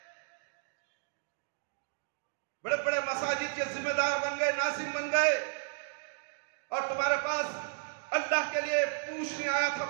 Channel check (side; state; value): left; silent; digital silence